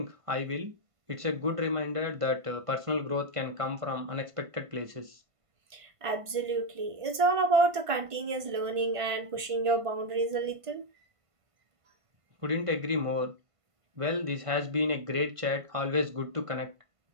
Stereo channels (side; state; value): left; late; 1.5 ms